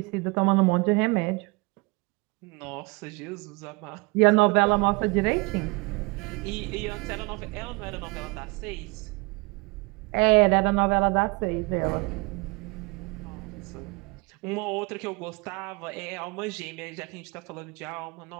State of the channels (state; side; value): quieter; left; 27.2 dB